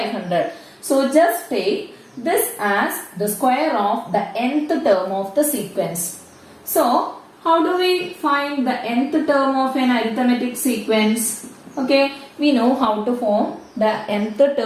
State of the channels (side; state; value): both; identical; correlation 1.00